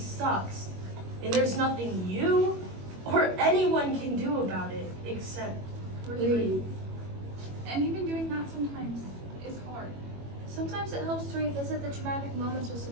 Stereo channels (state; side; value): late; left; 21 ms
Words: And there's nothing you or anyone can do about it except breathe. And even doing that sometimes is hard. Sometimes it helps to revisit the traumatic moments with